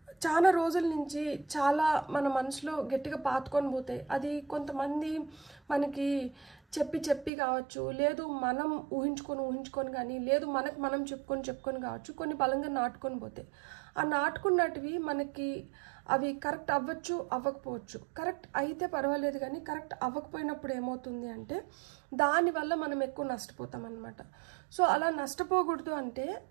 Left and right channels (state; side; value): drops out; left; at 7.3 s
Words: చాలా రోజుల నుంచి చాలా మన మనసులో గట్టిగా పాతుకొని పోతాయి. అది కొంతమంది మనకి చెప్పి కావచ్చు, లేదు మనం ఊహించుకొని కానీ, లేదు మనకు మనం చెప్పుకొని కావచ్చు, కొన్ని బలంగా నాటుకొని పోతాయి. ఆ నాటుకున్నటివి మనకి అవి కరెక్ట్ అవ్వచ్చు, అవ్వకపోవచ్చు. కరెక్ట్ అయితే పర్వాలేదు, కానీ కరెక్ట్ అవ్వకపోయినప్పుడు ఏమవుతుంది అంటే దానివల్ల మనం ఎక్కువ నష్టపోతాం అన్నమాట. సో అలా నష్టపోకూడదు అంటే